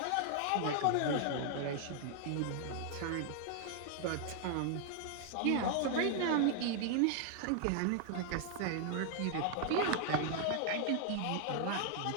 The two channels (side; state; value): both; different; correlation 0.00